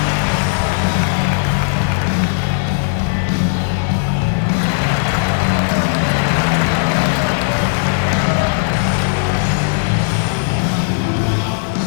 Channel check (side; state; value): right; silent; digital silence